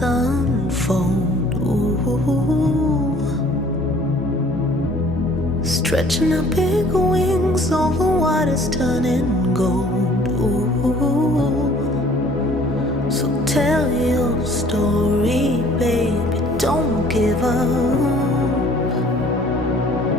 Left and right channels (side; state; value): both; normal; correlation 0.55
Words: unfold. Ooh. Stretching out big wings over waters turning gold. Ooh. So tell your story, baby, don't give up.